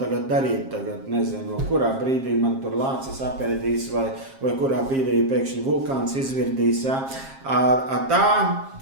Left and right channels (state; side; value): late; left; 7.5 ms